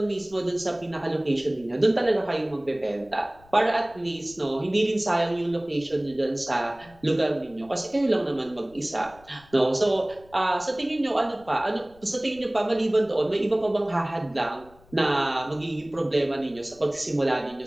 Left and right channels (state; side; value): noise; left; rumble, 26 dB below the sound